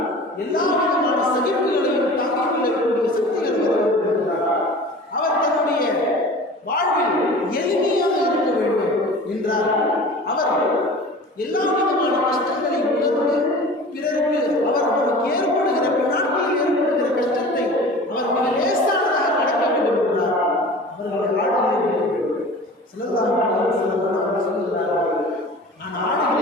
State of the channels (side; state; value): both; normal; correlation 0.39